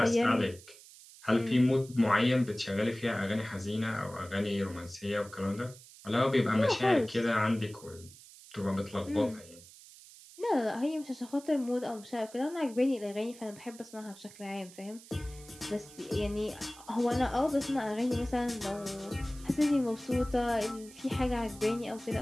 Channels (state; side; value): noise; right; hiss, 20 dB below the sound